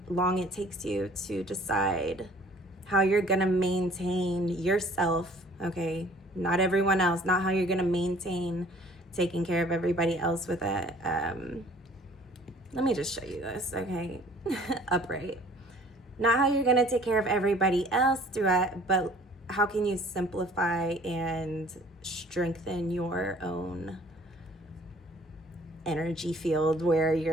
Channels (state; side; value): normal; both; correlation 0.53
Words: long it takes you to decide how you're gonna maintain yourself. Okay, not everyone else, not how you're gonna maintain taking care of everybody else with it. Let me just show you this, okay? Upright. Not how you're gonna take care of everybody else through it, but how can you simplify and strengthen your own energy field where